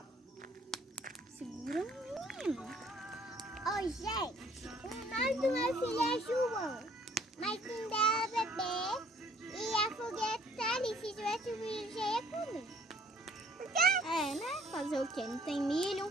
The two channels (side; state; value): both; normal; correlation 0.59